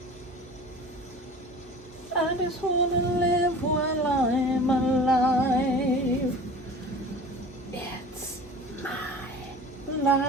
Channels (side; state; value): both; normal; correlation 0.40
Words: I just wanna live while I'm alive. It's my